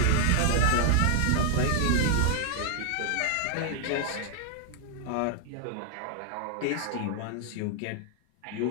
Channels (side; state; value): both; different; correlation 0.00